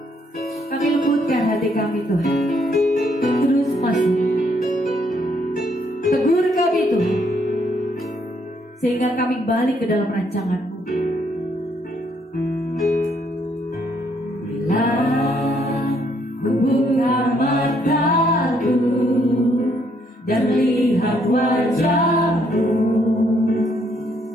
Kami lembutkan hati kami Tuhan, terus masuk, tegur kami Tuhan, sehingga kami balik ke dalam rancangan-Mu. Bila ku buka mataku dan lihat wajah-Mu,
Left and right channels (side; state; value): both; normal; correlation 0.70